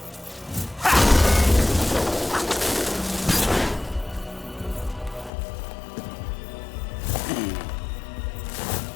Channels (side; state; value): right; drops out; at 5.3 s